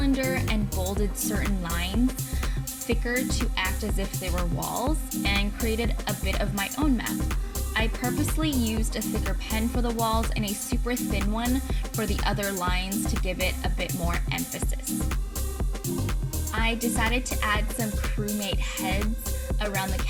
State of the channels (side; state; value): both; identical; correlation 1.00